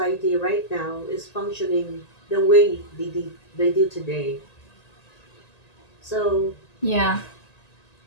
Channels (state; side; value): late; right; 1.9 ms